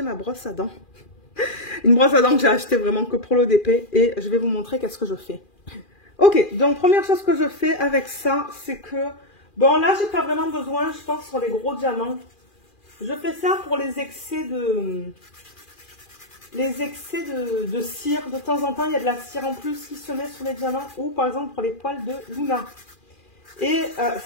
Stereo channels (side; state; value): right; late; 2.4 ms